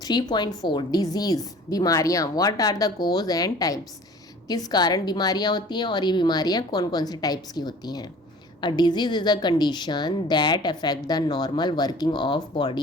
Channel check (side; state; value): both; normal; correlation 0.47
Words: 3.4 डिजीज़, बीमारियाँ, what are the cause and types. किस कारण बीमारियाँ होती हैं और ये बीमारियाँ कौन कौन से टाइप्स की होती हैं। A disease is a condition that affect the normal working of